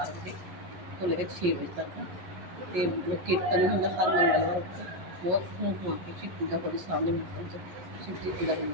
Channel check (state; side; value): late; left; 11 ms